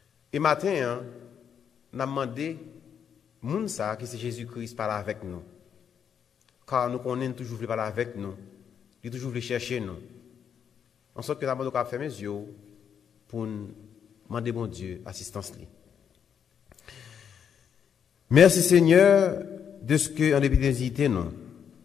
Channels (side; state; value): right; quieter; 7.9 dB